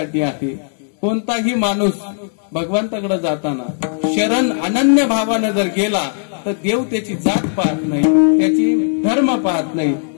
आहे. कोणताही माणूस भगवंताकडे जाताना शरण अनन्य भावानं जर गेला तर देव त्याची जात पाहत नाही, त्याची धर्म पाहत नाही,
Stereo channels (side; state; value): right; silent; digital silence